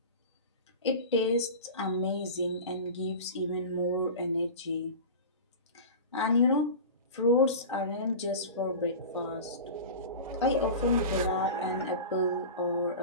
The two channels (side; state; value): both; inverted; correlation -0.31